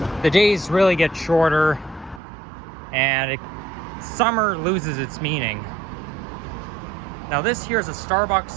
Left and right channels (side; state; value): left; drops out; at 2.2 s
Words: the days really get shorter, and summer loses its meaning. Now this here is a